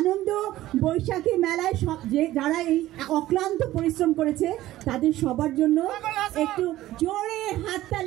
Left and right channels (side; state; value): left; quieter; 15.3 dB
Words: বৈশাখী মেলায় যারা এই অক্লান্ত পরিশ্রম করেছে তাদের সবার জন্য একটু জোরে